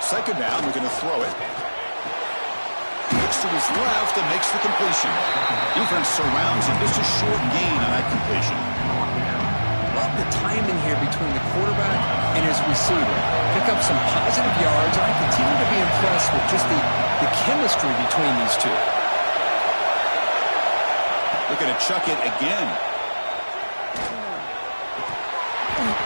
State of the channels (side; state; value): both; inverted; correlation -1.00